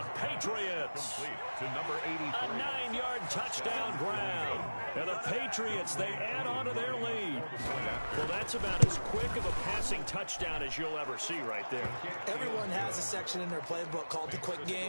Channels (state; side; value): inverted; both; correlation -1.00